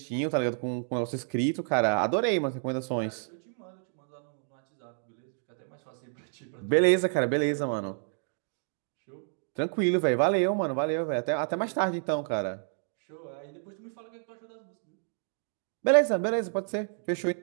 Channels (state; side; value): silent; left; digital silence